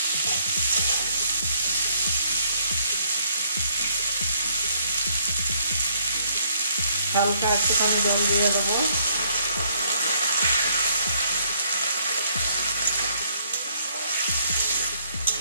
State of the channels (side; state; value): both; inverted; correlation -0.66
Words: হালকা একটুখানি জল দিয়ে দেবো।